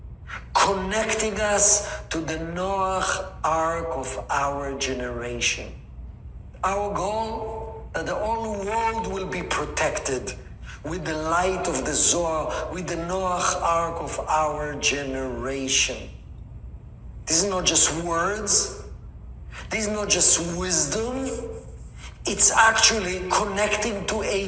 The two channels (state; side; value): identical; both; correlation 1.00